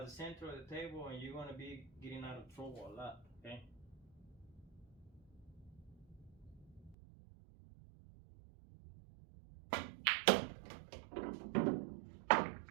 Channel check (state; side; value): drops out; left; at 7.0 s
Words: the center of the table, and you're going to be getting out of trouble a lot. Okay.